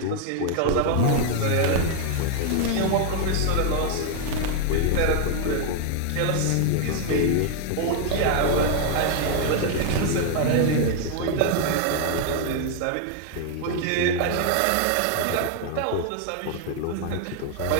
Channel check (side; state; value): both; different; correlation 0.00